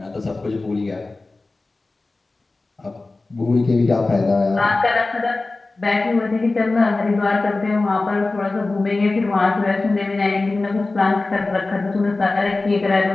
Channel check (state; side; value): quieter; right; 3.3 dB